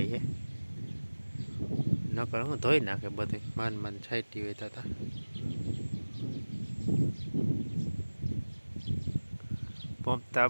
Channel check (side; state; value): both; inverted; correlation -1.00